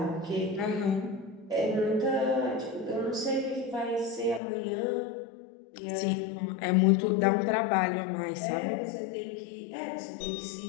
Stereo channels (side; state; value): right; drops out; at 4.4 s